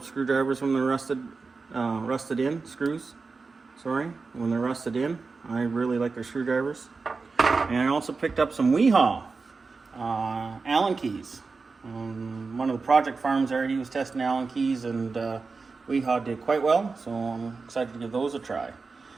screwdrivers when they're rusted in screws. Sorry, when they're rusted in. I really like their screwdrivers. And I also picked up some Weehaw Allen keys. One of the project farms there, he was testing Allen keys, and Weehaw did quite well, so I'm excited to give those a try.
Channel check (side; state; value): left; quieter; 4.3 dB